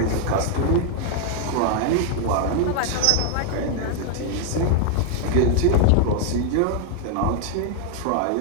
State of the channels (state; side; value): different; both; correlation 0.00